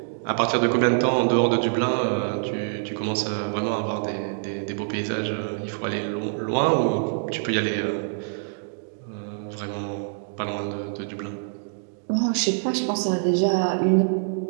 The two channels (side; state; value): left; silent; digital silence